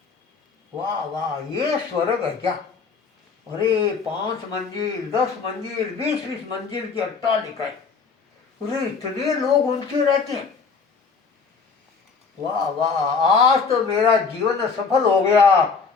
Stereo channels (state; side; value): quieter; right; 5.2 dB